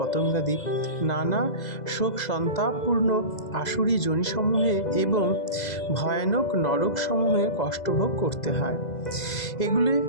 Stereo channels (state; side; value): late; right; 2.0 ms